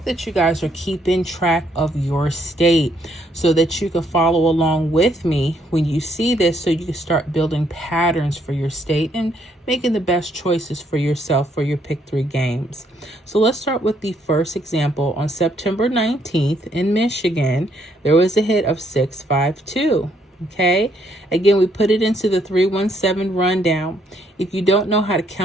that you guys are keeping track of your state so that you can follow along with me when you see this, so you can start building patterns for your state and making the best choices for yourself for your pick 3 games. So let's start with the first example. On September 19th in Michigan, there was a hit of 652. Okay, again, we put it into the 317 rundown. If you don't know how to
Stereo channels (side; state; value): both; normal; correlation 0.71